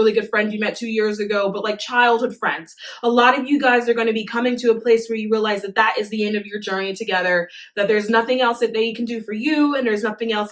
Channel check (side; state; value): both; identical; correlation 1.00